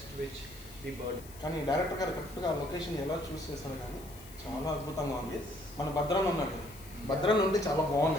which the bird. కానీ director గారు కరెక్ట్గా location ఎలా చూస్ చేశారు, కానీ చాలా అద్భుతంగా ఉంది. మన భద్రాన్ని ఉన్నాడు, భద్రాన్ని ఉంటే చాలా బాగుంది.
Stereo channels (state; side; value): noise; left; hiss, 19 dB below the sound